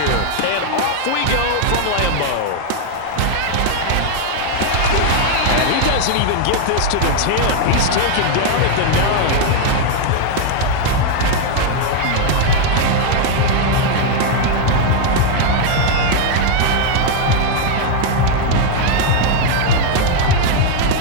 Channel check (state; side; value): different; both; correlation 0.00